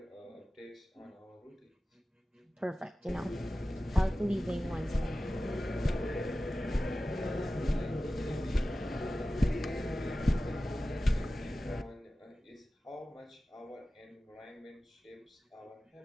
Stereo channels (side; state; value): both; normal; correlation 0.95